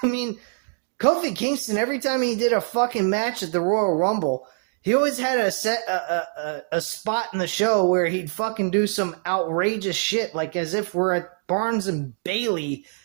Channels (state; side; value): silent; left; 63 dB below the other